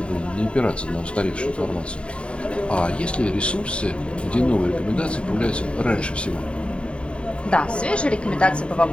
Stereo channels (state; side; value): late; right; 0.057 ms